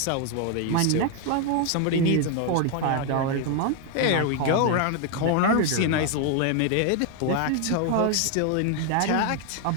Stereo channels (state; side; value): different; both; correlation 0.01